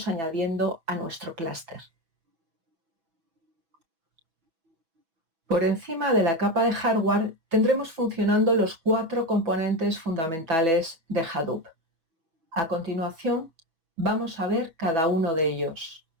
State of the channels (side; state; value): left; late; 6.1 ms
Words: añadiendo a nuestro clúster. Por encima de la capa de hardware tendremos funcionando los 4 componentes fundamentales de Hadoop. A continuación, vamos a ver cada uno de ellos.